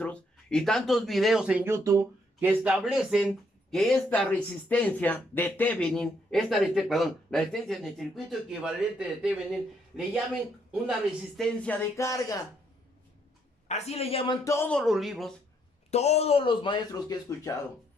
y tantos videos en YouTube que establecen que esta resistencia de Thevenin, la resistencia en el circuito equivalente de Thevenin, le llamen una resistencia de carga. Así le llaman todos los libros, todos los maestros que he escuchado.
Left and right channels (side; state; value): both; normal; correlation 0.72